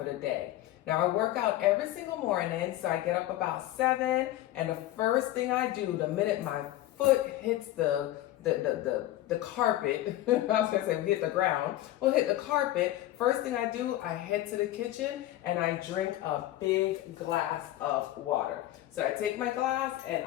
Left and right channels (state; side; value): quieter; right; 14.6 dB